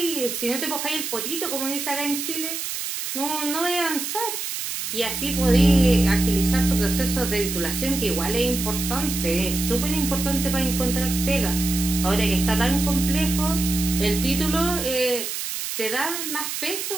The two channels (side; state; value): right; noise; hiss, 4 dB below the sound